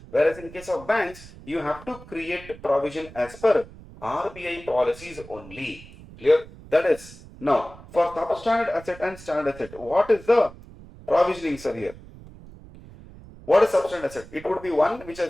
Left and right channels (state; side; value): noise; right; rumble, 19 dB below the sound